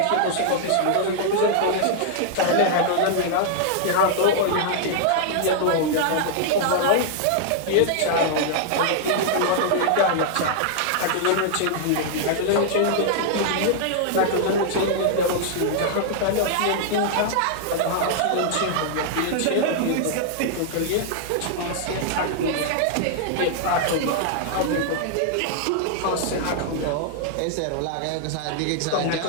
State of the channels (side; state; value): both; different; correlation -0.01